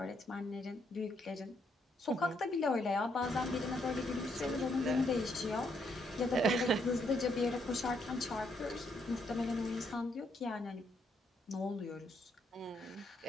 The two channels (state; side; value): normal; both; correlation 0.74